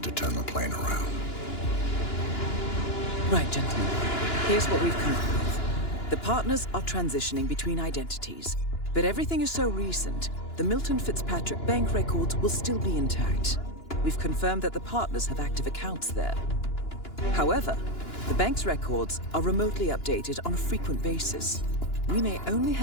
to turn the plane around. Right, gentlemen. Here's what we've come up with. The partners are transitioning between identities, but everything is so recent, the Milton Fitzpatrick bank records will still be intact. We've confirmed that the partners have active accounts there. However, the bank's records are remotely updated on a frequent basis. We may only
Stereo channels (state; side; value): late; right; 2.9 ms